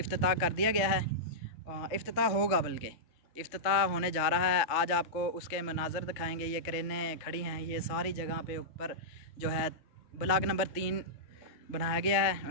कर दिया गया है। इफ्तिताह होगा, बल्कि इफ्तिताह होने जा रहा है। आज आपको उसके मनाज़र दिखाएंगे। ये क्रेनें खड़ी हैं, ये सारी जगह पे ऊपर जो है ब्लॉक नंबर 3 बनाया गया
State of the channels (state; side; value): late; right; 3.1 ms